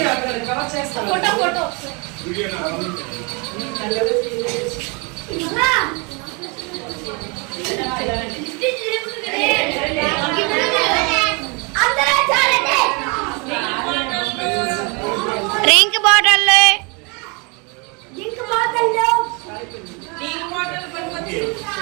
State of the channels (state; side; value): quieter; left; 31.6 dB